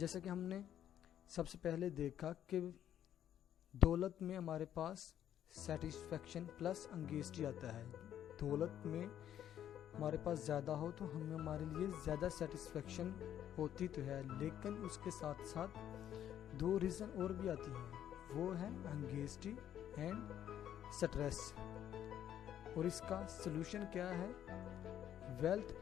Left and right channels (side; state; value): right; quieter; 10.6 dB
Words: کہ ہم نے سب سے پہلے دیکھا کہ دولت میں ہمارے پاس سیٹسفیکشن پلس انگیزٹی آتا ہے۔ دولت میں ہمارے پاس زیادہ ہو تو ہمارے لیے زیادہ سیٹسفیکشن ہوتی تو ہے، لیکن اس کے ساتھ ساتھ دو ریزن اور بھی آتی ہیں، وہ ہے انگیزٹی اینڈ سٹریس۔ اور اس کا سلوشن کیا ہے؟ Wealth